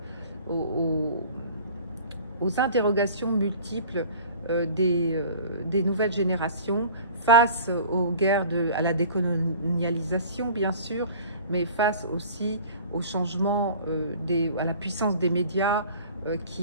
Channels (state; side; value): inverted; both; correlation -0.45